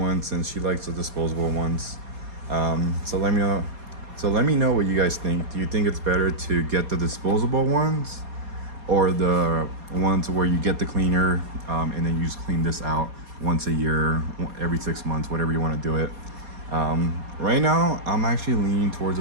since she likes the disposable ones. So let me know what you guys think. Do you think it's better to get the disposable ones, or the ones where you get the cleaner and then you just clean this out once a year, every 6 months, whatever you want to do it? Right now I'm actually leaning towards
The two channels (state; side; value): late; left; 4.2 ms